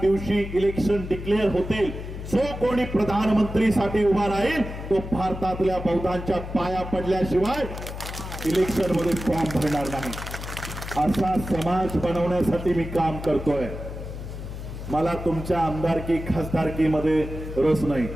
दिवशी इलेक्शन डिक्लेअर होतील, जो कोणी प्रधानमंत्रीसाठी उभा राहील तो भारतातल्या बौद्धांच्या पाया पडल्याशिवाय इलेक्शन मध्ये फॉर्म भरणार नाही. असा समाज बनवण्यासाठी मी काम करतोय. मला तुमच्या आमदारकी खासदारकीमध्ये रस नाही.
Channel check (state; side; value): noise; left; hum, 9 dB below the sound